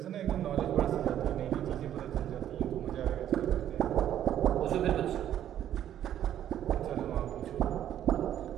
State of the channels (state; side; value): quieter; left; 10.9 dB